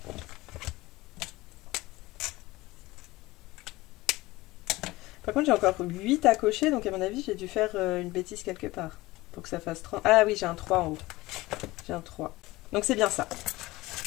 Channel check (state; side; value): quieter; right; 19.6 dB